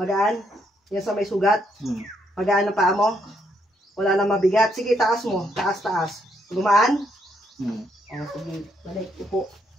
Yan sa may sugat? Magaan ang paa mo? Wala na mabigat? Sige, taas mo. Taas. Gumaan? Oh, sige. Balik. Upo.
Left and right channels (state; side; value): normal; both; correlation 0.74